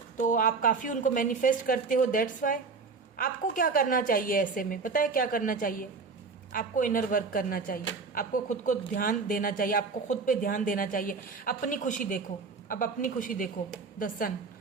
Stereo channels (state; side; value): quieter; left; 4.6 dB